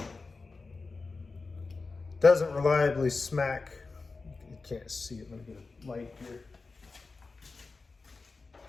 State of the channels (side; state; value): right; quieter; 4.0 dB